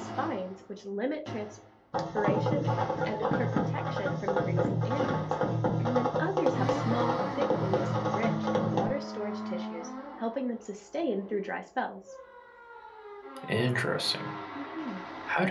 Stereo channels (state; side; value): identical; both; correlation 1.00